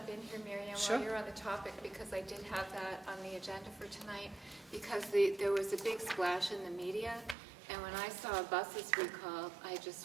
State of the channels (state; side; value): drops out; left; at 7.4 s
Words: in here, Marion, Sure. while you're on the topic, because I did have that on the agenda for tonight, because there was a big splash in the media, and when I saw buses recalled, I